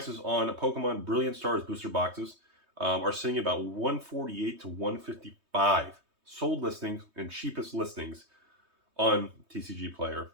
on Pokemon Brilliant Stars booster boxes are sitting about $148 to $155 sold listings and cheapest listings on TCG Player,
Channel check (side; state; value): left; late; 3.2 ms